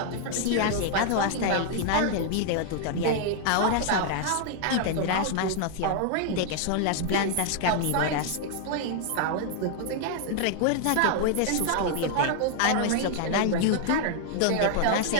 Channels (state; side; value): different; both; correlation 0.00